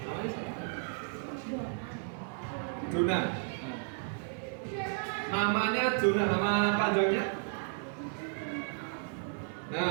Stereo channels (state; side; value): silent; left; 56 dB below the other